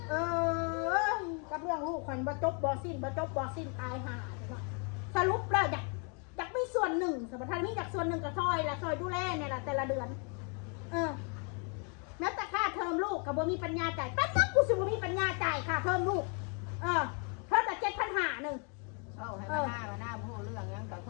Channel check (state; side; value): quieter; right; 37.3 dB